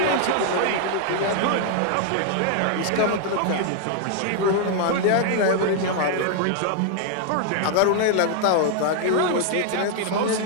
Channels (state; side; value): different; both; correlation 0.00